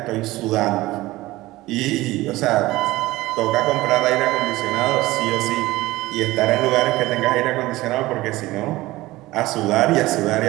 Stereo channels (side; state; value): left; quieter; 18.4 dB